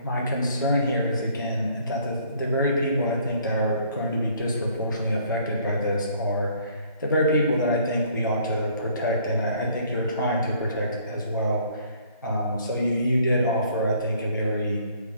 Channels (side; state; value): both; inverted; correlation -0.60